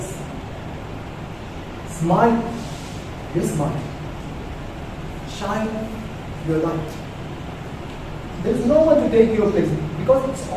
Smile your smile. Shine your light. There is no one to take your place because it's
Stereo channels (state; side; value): identical; both; correlation 1.00